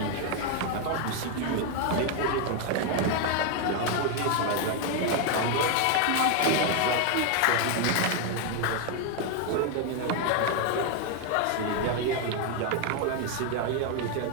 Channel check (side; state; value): both; different; correlation 0.01